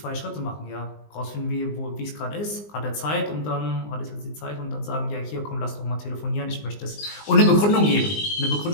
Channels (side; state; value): right; late; 19 ms